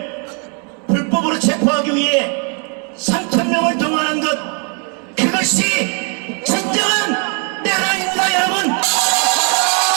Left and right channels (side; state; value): left; quieter; 38.0 dB